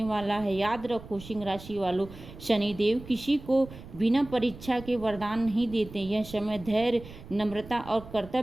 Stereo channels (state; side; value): noise; right; rumble, 16 dB below the sound